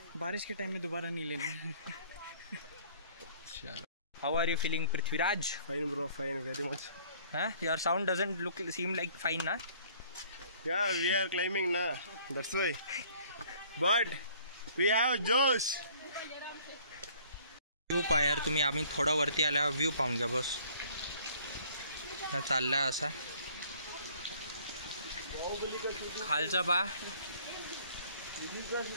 बारिश के टाइम में दोबारा नहीं लेना. How are you feeling Prithviraj? Fine bro, fine, very much. Your sound doesn't seem like fine ना. Yeah, we are climbing na. That's why. But we have Josh. View पहा यार तुम्ही. आम्ही थोडं वरती आल्यावर व्ह्यू पाहून घ्या बस. चाललाय असा खालचा पहा.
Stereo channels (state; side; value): inverted; both; correlation -0.56